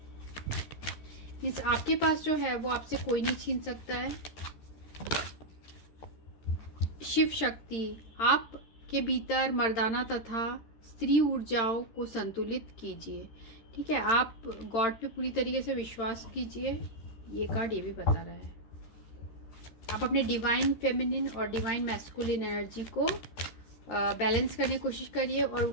इस आपके पास जो है वो आपसे कोई नहीं छीन सकता है। शिव शक्ति, आपके भीतर मर्दाना तथा स्त्री ऊर्जाओं को संतुलित कीजिए। ठीक है, आप गॉड पे पूरी तरीके से विश्वास कीजिए। ये कार्ड ये भी बता रहा है आप अपने डिवाइन फेमिनिन और डिवाइन मैस्कुलिन एनर्जी को बैलेंस करने की कोशिश करिए, और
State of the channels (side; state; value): right; late; 13 ms